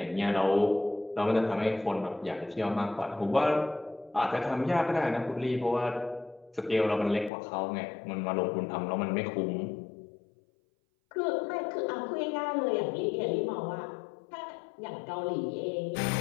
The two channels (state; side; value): drops out; right; at 7.3 s